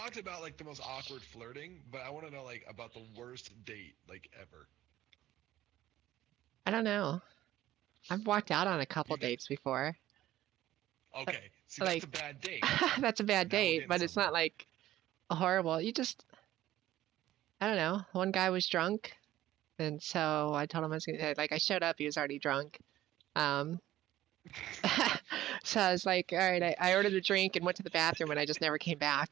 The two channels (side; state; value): left; quieter; 14.2 dB